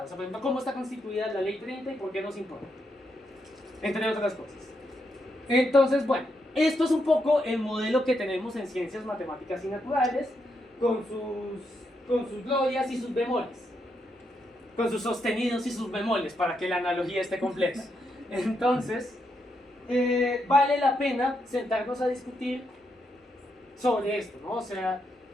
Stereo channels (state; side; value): normal; both; correlation 0.81